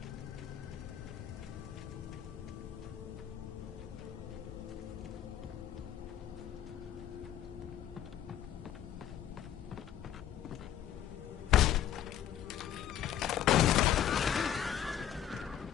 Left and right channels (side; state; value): right; quieter; 10.5 dB